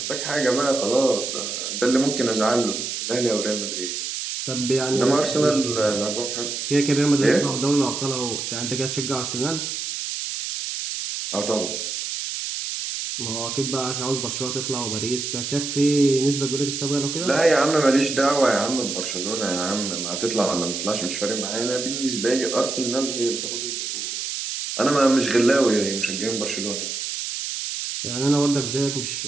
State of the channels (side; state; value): right; noise; hiss, 4 dB below the sound